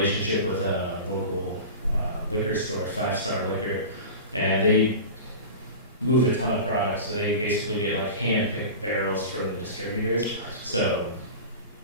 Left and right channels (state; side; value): inverted; both; correlation -0.31